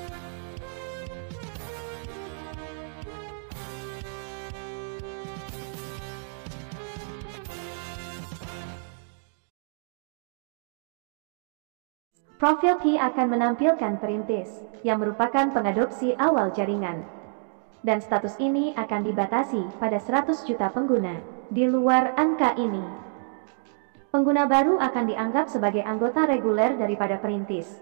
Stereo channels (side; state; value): left; silent; digital silence